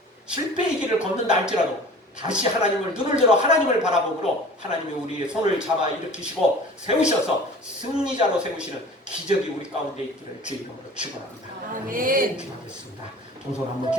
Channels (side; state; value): both; normal; correlation 0.43